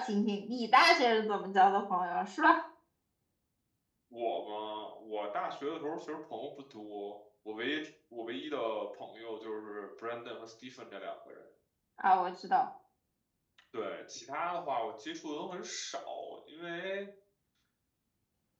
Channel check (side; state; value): both; identical; correlation 1.00